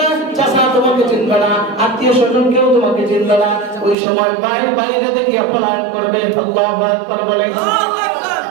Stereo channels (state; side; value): drops out; left; at 4.0 s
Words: না, চাচা তোমাকে চিনবে না, আত্মীয়-স্বজন কেউ তোমাকে চিনবে না, ওই সময় ভাই ভাইরে দেখে পলায়ন করবে। আল্লাহু আকবার বলেন।